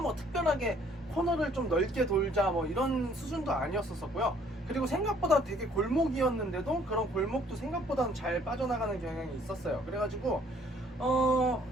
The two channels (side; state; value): both; normal; correlation 0.61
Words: 특별하게 코너를 좀 넓게 돌자 이런 수준도 아니었었고요. 그리고 생각보다 되게 골목이었는데도 그런 골목도 생각보다는 잘 빠져나가는 경향이 있었어요. 그래가지고